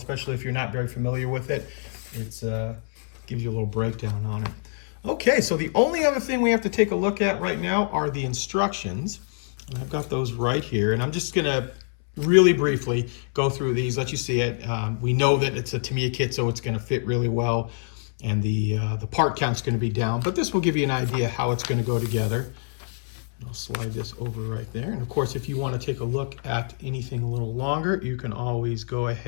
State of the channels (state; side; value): silent; right; 61 dB below the other